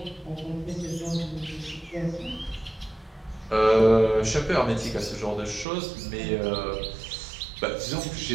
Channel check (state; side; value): drops out; left; at 5.7 s